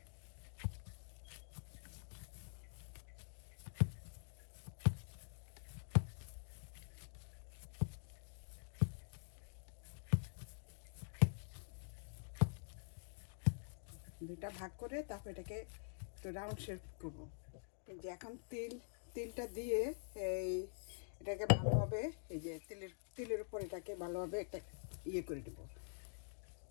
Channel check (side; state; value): right; silent; digital silence